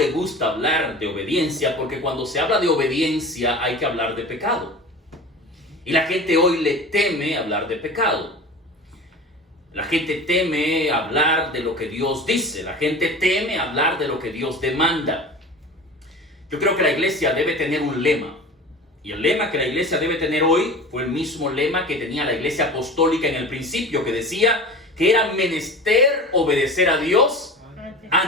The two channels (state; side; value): normal; both; correlation 0.35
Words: gusta hablar de obediencia porque cuando se habla de obediencia hay que hablar de pecado. Y la gente hoy le teme hablar de pecado. La gente teme hablar de lo que Dios dice. La gente teme hablar de lo que Dios demanda. Yo creo que la iglesia debe tener un lema. Y el lema que la iglesia debe tener hoy fue el mismo lema que tenía la iglesia apostólica en el principio, que decía que era menester obedecer a Dios